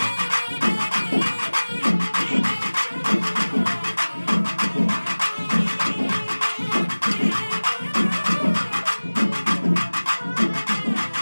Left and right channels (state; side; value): inverted; both; correlation -1.00